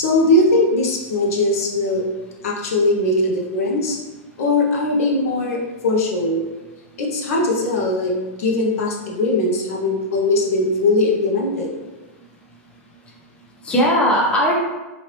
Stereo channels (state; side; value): normal; both; correlation -0.13